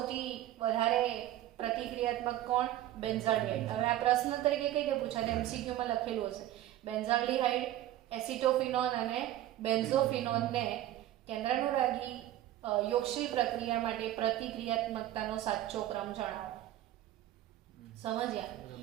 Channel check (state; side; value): quieter; left; 13.6 dB